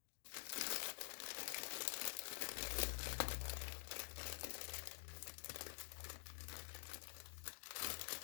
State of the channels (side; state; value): right; silent; digital silence